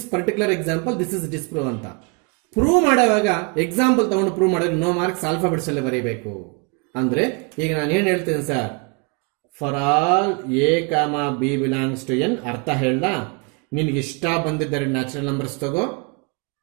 particular example this is disprove ಅಂತ. ಪ್ರೂವ್ ಮಾಡುವಾಗ ಎಕ್ಸಾಂಪಲ್ ತಗೊಂಡು ಪ್ರೂವ್ ಮಾಡಿದ್ರೆ ನೋ ಮಾರ್ಕ್ಸ್ ಆಲ್ಫಾಬೆಟ್ಸ್ ಅಲ್ಲೇ ಬರೀಬೇಕು. ಅಂದ್ರೆ ಈಗ ನಾನು ಏನು ಹೇಳ್ತೀನಿ sir, for all a comma b belongs to N ಅರ್ಥ ಹೇಳ. ನಿನ್ಗೆ ಇಷ್ಟ ಬಂದಿದ್ದ ನ್ಯಾಚುರಲ್ ನಂಬರ್ಸ್ ತಗೋ,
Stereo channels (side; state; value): left; quieter; 32.2 dB